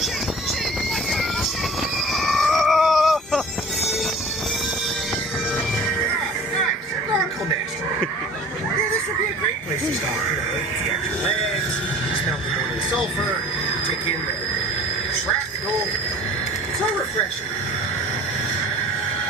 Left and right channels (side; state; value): both; normal; correlation 0.44